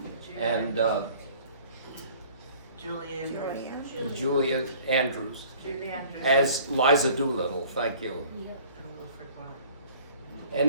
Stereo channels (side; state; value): both; inverted; correlation -0.51